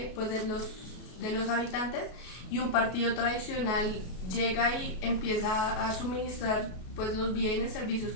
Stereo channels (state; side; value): late; right; 33 ms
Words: pues, de los habitantes, y un partido tradicional llega y empieza a suministrar pues, los bienes, servicios